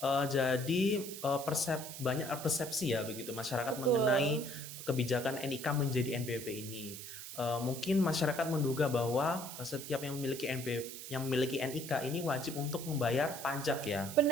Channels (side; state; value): right; noise; hiss, 10 dB below the sound